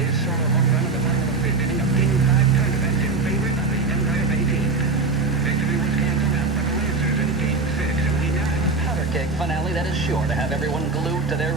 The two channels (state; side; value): quieter; left; 3.9 dB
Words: sort of home run at the bottom of the fifth inning of Game 5 tournament in favor of the Empire Bay team. Victory was canceled out for the Lancers in Game 6, and we now have a powder keg finale that is sure to have everyone glued to their